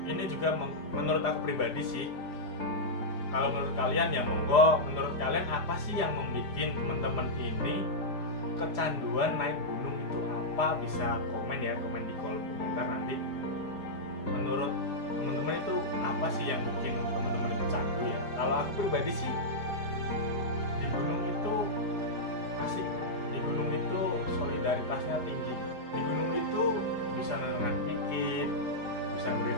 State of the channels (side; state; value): right; late; 4.9 ms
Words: ini juga menurut aku pribadi sih, kalau menurut kalian ya monggo, menurut kalian apa sih yang membuat teman-teman ini kecanduan naik gunung itu apa? Bisa komen ya, komen di kolom komentar nanti. Menurut teman-teman itu apa sih yang bikin teman-teman itu candu ya? Kalau aku pribadi sih, di gunung itu asik, di gunung itu solidaritasnya tinggi, di gunung itu bisa nenangkan pikir, bisa